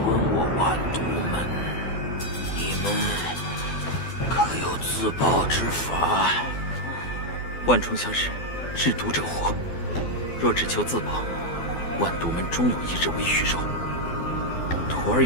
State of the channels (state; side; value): late; right; 12 ms